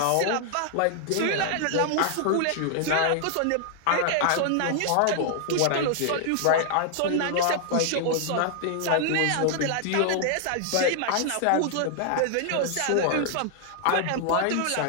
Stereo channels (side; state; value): both; different; correlation 0.00